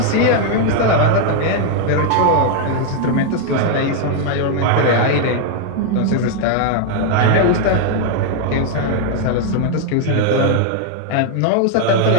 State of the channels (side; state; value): both; different; correlation 0.00